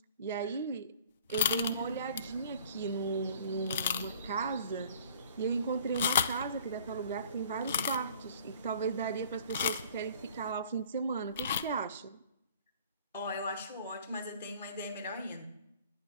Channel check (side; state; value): both; inverted; correlation -0.51